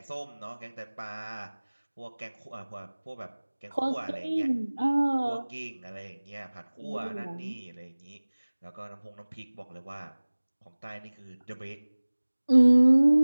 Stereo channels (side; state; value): both; inverted; correlation -1.00